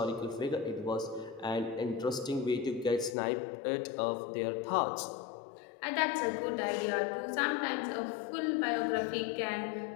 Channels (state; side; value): drops out; right; at 3.2 s